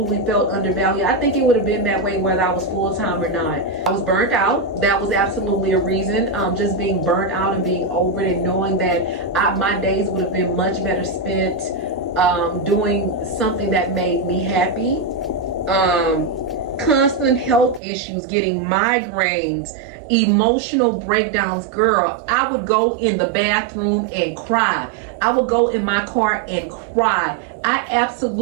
felt undervalued. I think it would have been that way whether I was full-time or not. I was burnt out. That was absolutely a reason. Just being burnt out and being over it, and knowing that my days would have been much better spent doing something that made me happy. Constant health issues, getting migraines, emotional breakdowns. Girl, I would go in the bathroom and cry. I would go in my car and cry. I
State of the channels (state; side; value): drops out; left; at 17.8 s